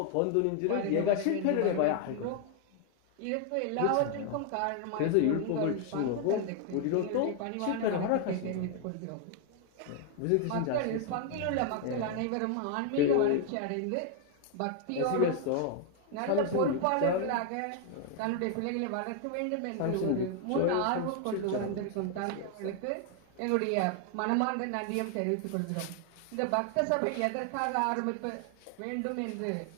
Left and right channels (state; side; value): different; both; correlation 0.00